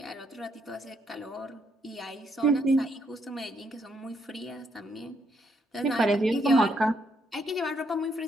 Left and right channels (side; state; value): both; normal; correlation 0.74